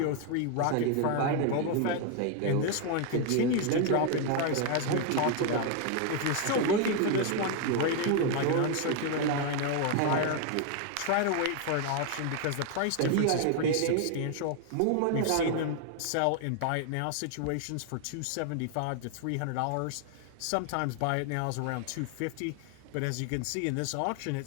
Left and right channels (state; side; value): different; both; correlation 0.00